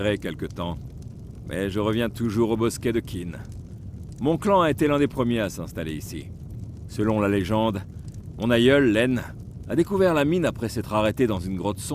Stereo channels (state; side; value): identical; both; correlation 1.00